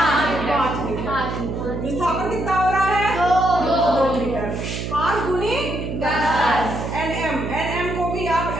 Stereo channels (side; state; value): right; noise; hum, 5 dB below the sound